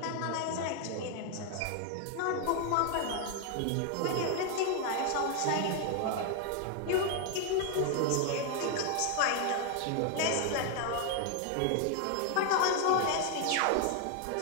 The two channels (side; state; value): both; different; correlation 0.00